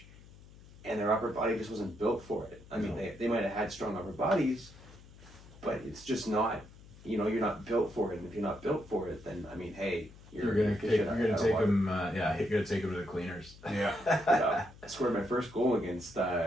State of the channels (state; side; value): noise; left; hum, 21 dB below the sound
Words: and their upper body just wasn't built for it. I mean, No. they might have had strong upper bodies, but it's just not. You know, you're not built for it, and if you're not built for it, then I mean, hey, You're gonna take them. Yeah, you're gonna take them to the cleaners. Yeah. I scored my first goal against